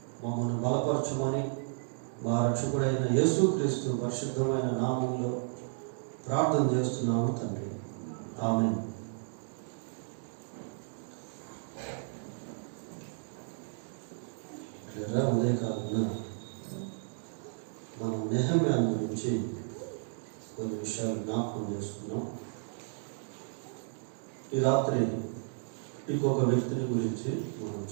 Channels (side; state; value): left; silent; digital silence